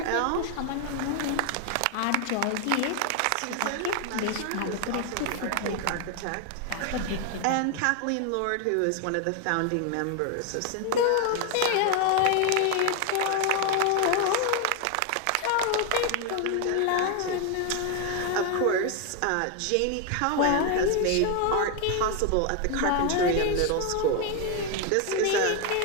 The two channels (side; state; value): both; different; correlation 0.01